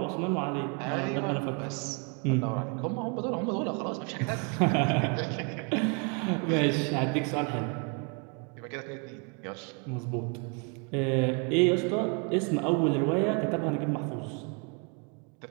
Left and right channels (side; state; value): left; quieter; 36.1 dB